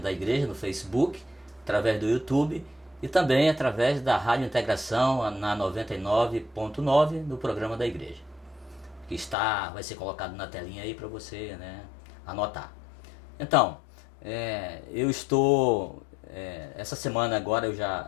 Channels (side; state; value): right; drops out; at 9.3 s